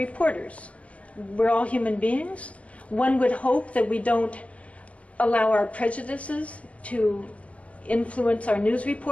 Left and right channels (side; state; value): right; late; 0.065 ms